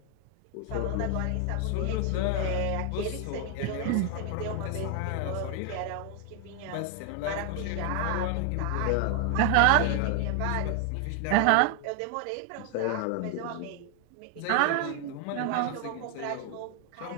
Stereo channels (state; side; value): different; both; correlation 0.00